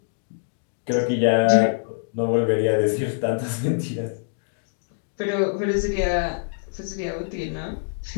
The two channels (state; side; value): silent; right; digital silence